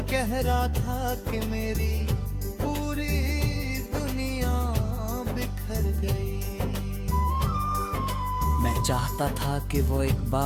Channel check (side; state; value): both; identical; correlation 1.00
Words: गहरा था कि मेरी पूरी दुनिया बिखर गई। मैं चाहता था कि वो एक